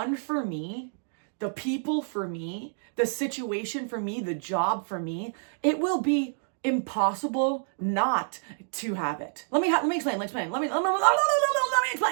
for me, the people for me, the situation for me, the job for me, it will be impossible not to have it. Let me explain. Let me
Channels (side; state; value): left; silent; digital silence